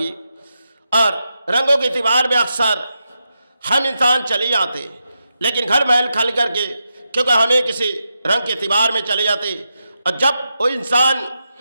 और रंगों के त्योहार में अक्सर हम इंसान चले जाते, लेकिन घर महल खाली करके, क्योंकि हमें किसी रंग के त्योहार में चले जाते, और जब वो इंसान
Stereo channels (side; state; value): both; inverted; correlation -0.87